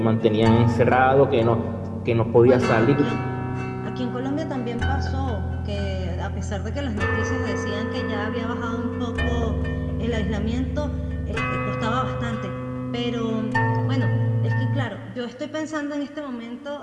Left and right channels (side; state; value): both; identical; correlation 1.00